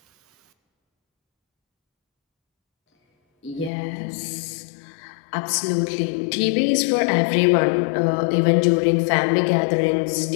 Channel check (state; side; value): drops out; right; at 3.7 s